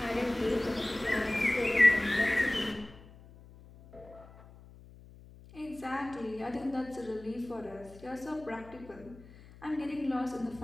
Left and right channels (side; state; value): left; noise; hum, 21 dB below the sound